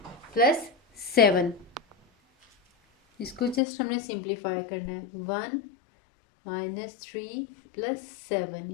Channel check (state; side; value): drops out; right; at 3.6 s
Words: plus 7, इसको जस्ट हमने सिंप्लीफाई करना है, 1 -3 प्लस